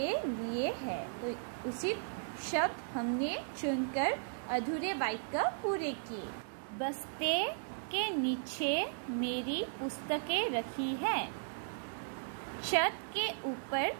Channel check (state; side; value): silent; left; digital silence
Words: लिए है। तो उचित शब्द हमने चुनकर अधूरे वाक्य पूरे किए। बस्ते के नीचे मेरी पुस्तकें रखी है। छत के ऊपर